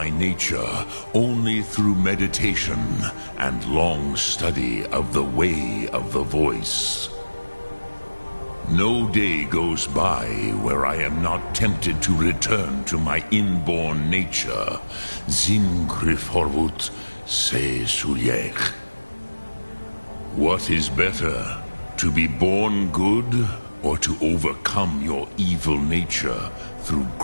nature only through meditation and long study of the way of the voice. No day goes by where I am not tempted to return to my inborn nature. Zimgrifhorvut se sulyech. What is better, to be born good or to overcome your evil nature through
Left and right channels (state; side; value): inverted; both; correlation -1.00